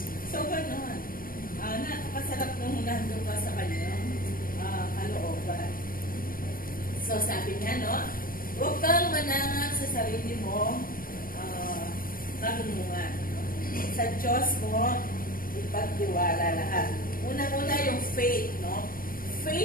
So, gano'n. Nakakasarap nung nandun ka sa Kanyang kalooban. So, sabi niya, no? Huwag kang manangan sa sarili mo karunungan. Sa Diyos mo, ipagtiwala lahat. Unang-una yung faith, no?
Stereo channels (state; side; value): late; right; 0.41 ms